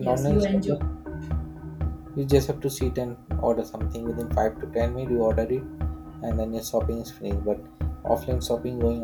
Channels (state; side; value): identical; both; correlation 1.00